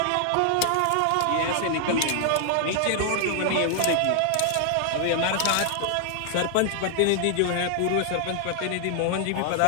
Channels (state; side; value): different; both; correlation 0.00